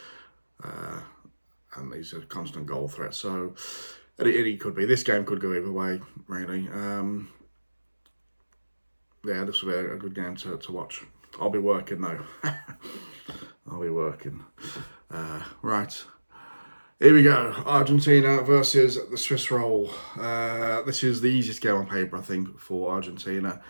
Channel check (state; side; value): inverted; both; correlation -1.00